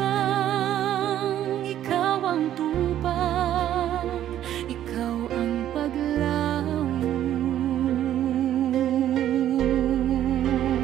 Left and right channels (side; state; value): left; quieter; 11.7 dB